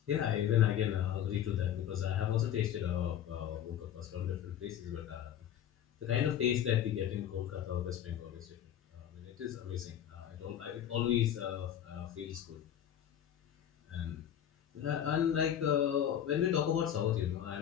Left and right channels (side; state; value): right; quieter; 10.2 dB